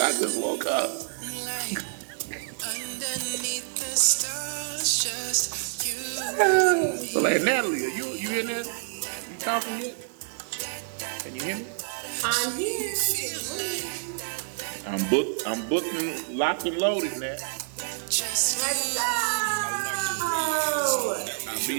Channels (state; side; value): silent; left; digital silence